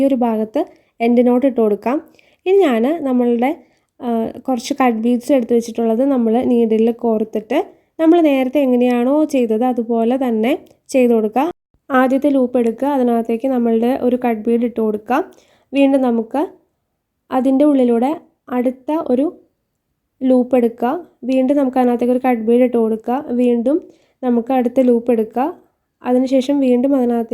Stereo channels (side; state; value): both; identical; correlation 1.00